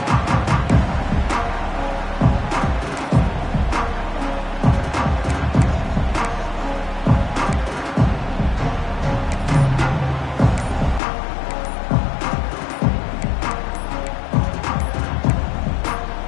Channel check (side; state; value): right; drops out; at 11.0 s